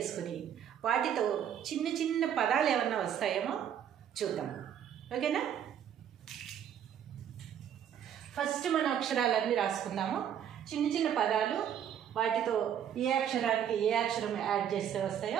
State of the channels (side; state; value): left; quieter; 9.4 dB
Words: వాటితో చిన్న చిన్న పదాలు ఏమన్నా వస్తాయేమో చూద్దాం. ఓకేనా? ఫస్ట్ మన అక్షరాలన్నీ రాసుకుందాము. చిన్న చిన్న పదాలు, వాటితో ఏ అక్షరానికి ఏ అక్షరం యాడ్ చేస్తే